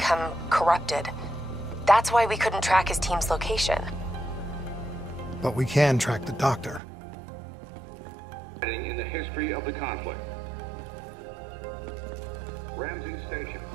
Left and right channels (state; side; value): drops out; left; at 6.8 s